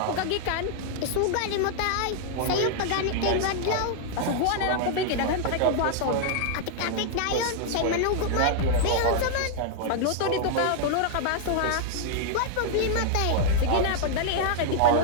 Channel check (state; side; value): different; both; correlation -0.01